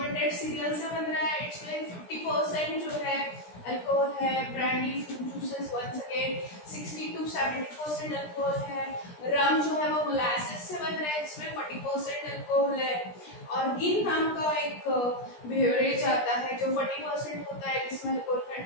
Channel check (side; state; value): right; late; 17 ms